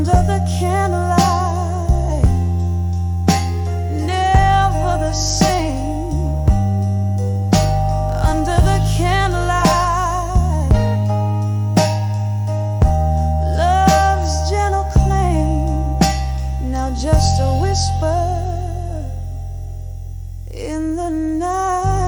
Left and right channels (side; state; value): both; identical; correlation 1.00